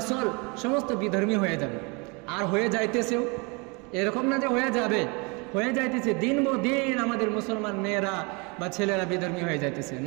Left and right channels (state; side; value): quieter; left; 29.9 dB